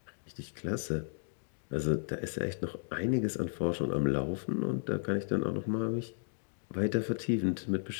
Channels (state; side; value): silent; right; digital silence